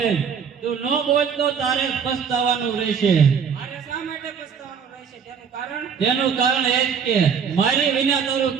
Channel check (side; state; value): left; quieter; 6.8 dB